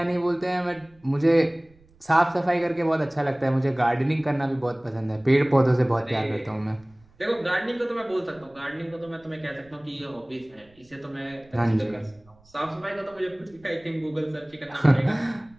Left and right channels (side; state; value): right; noise; rumble, 30 dB below the sound